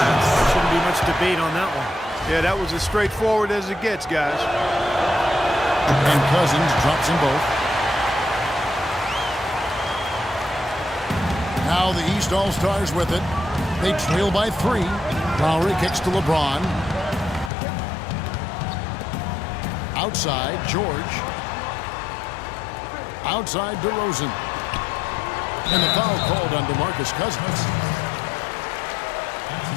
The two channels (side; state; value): right; drops out; at 17.5 s